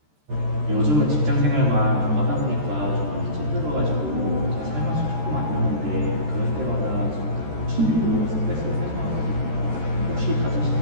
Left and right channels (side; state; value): left; late; 13 ms